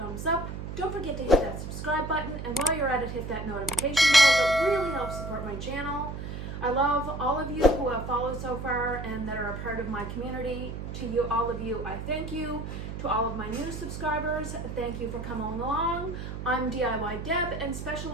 thumbs up. Don't forget to hit that subscribe button, and while you're at it, hit that notification bell. It really helps support my channel. I love all of you who have followed so far and that are a part of my community. To you, all of you, I thank you. To all of my new subscribers, thank you for coming along. I'm DIY Deb and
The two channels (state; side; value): noise; right; hum, 7 dB below the sound